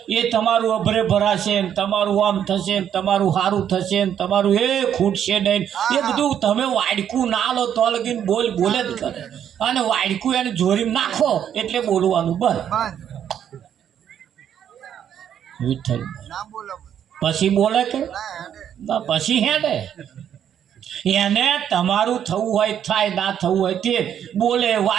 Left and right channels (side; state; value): left; quieter; 9.4 dB